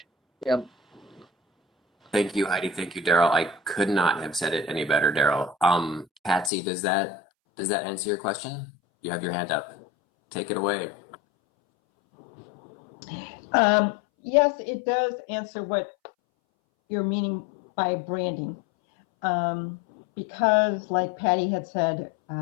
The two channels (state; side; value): drops out; right; at 6.5 s